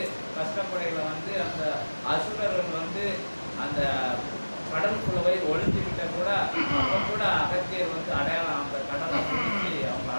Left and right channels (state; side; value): inverted; both; correlation -1.00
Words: கஷ்டப்படையில அந்த அசுரர்கள் அந்த கடலுக்குள்ளவை ஒழிஞ்சுக்கிட்ட கூட அப்போ கூட அகத்தியர் அடையாளம் அந்த கடலை பிடிச்சி அவங்க